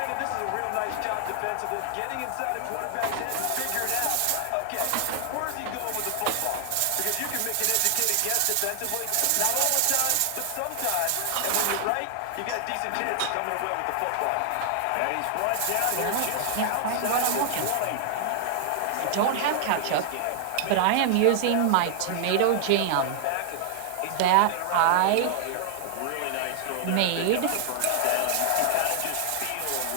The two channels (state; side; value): different; both; correlation 0.00